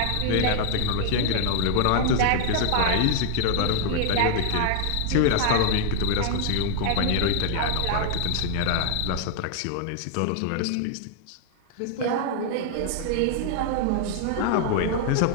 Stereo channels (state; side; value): different; both; correlation 0.00